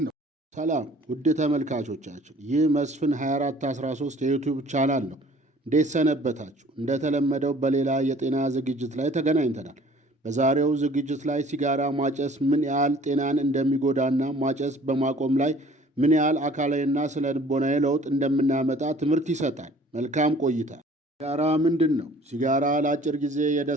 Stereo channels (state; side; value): normal; both; correlation 0.52